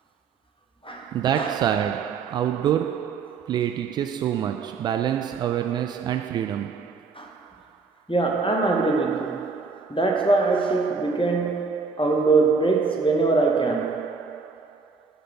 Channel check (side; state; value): left; quieter; 4.7 dB